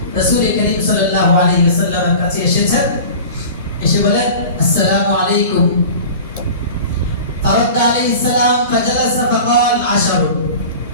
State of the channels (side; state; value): both; inverted; correlation -0.37